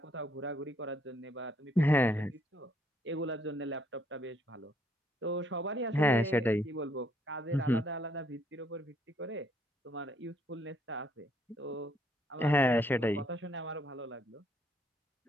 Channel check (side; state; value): both; normal; correlation 0.69